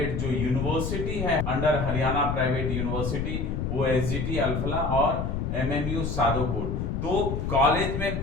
जो यूनिवर्सिटी है अंडर हरियाणा प्राइवेट यूनिवर्सिटी वो एसजीटी अल्फला और एमएमयू सादोपुर। तो कॉलेज में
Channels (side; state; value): left; noise; rumble, 2 dB below the sound